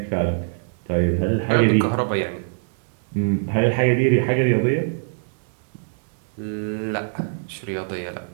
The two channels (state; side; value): silent; left; 60 dB below the other